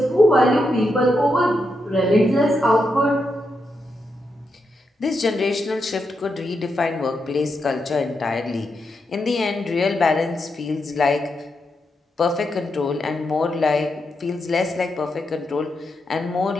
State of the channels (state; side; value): normal; both; correlation 0.84